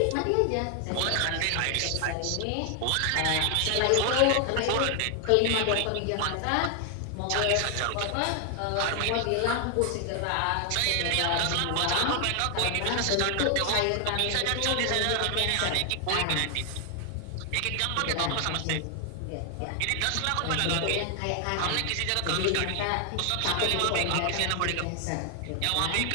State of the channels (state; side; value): different; both; correlation 0.00